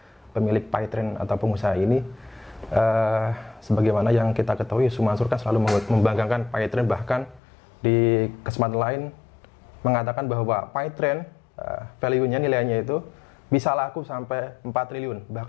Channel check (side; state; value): right; drops out; at 7.4 s